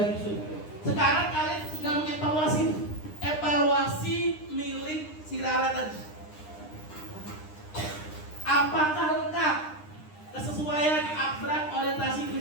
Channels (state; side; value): late; right; 9.8 ms